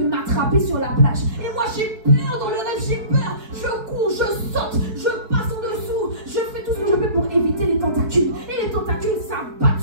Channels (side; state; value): left; late; 4.6 ms